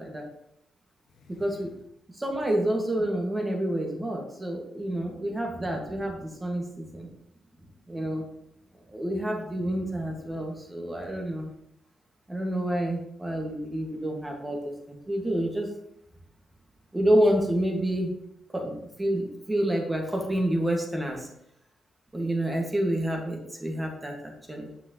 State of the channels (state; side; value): normal; both; correlation 0.90